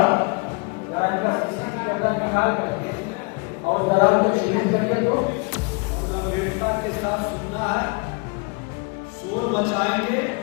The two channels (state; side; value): quieter; right; 30.6 dB